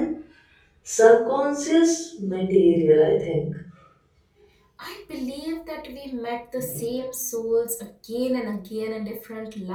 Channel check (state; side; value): identical; both; correlation 1.00